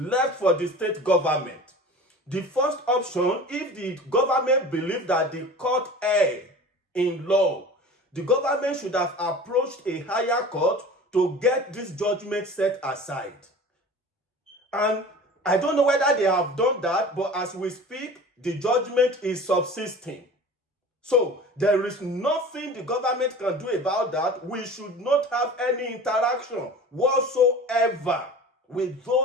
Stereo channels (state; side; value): normal; both; correlation 0.39